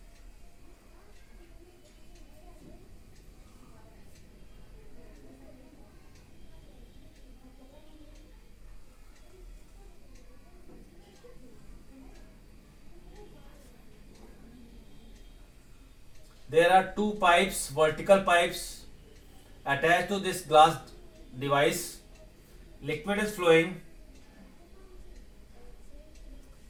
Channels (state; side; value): identical; both; correlation 1.00